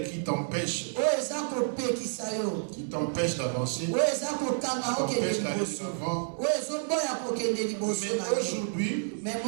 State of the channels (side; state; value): left; silent; 58 dB below the other